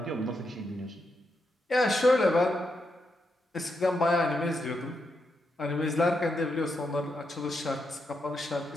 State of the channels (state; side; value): normal; both; correlation 0.83